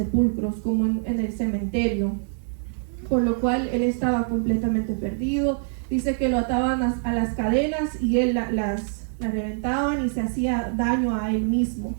como en el cementerio, por lo cual él estaba completamente perdido. Dice que lo ataban a las cadenas y él las reventaban y se hacía daño a él mismo.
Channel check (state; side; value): silent; left; 62 dB below the other